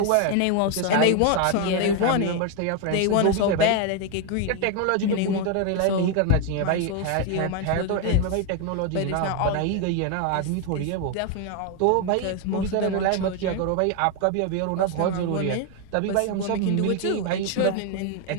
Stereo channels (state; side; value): different; both; correlation 0.01